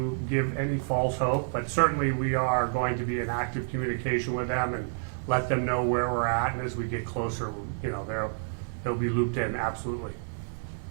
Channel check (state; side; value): silent; left; digital silence